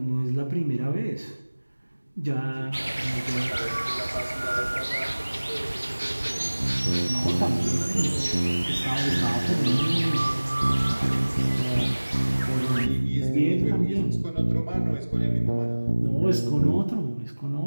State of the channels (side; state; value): both; inverted; correlation -1.00